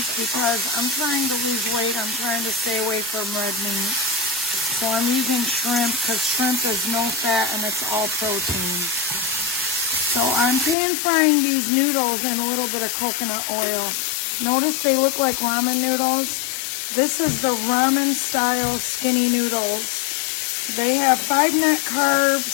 because I'm trying to lose weight. I'm trying to stay away from red meat. So I'm using shrimp because shrimp is no fat and it's all protein. So I'm pan frying these noodles in a little bit of coconut oil. Notice they look like ramen noodles. This is the ramen style skinny noodles. They have 5 net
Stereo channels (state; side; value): drops out; right; at 10.8 s